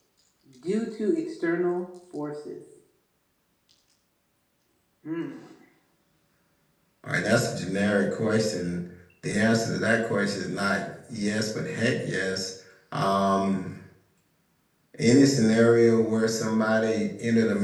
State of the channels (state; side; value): identical; both; correlation 1.00